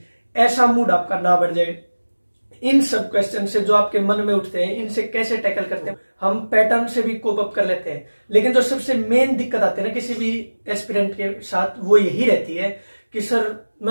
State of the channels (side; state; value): both; inverted; correlation -1.00